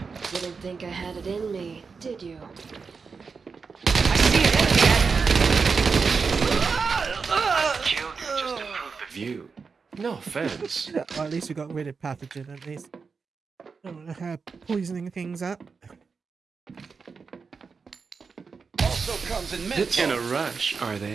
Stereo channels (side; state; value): left; quieter; 5.1 dB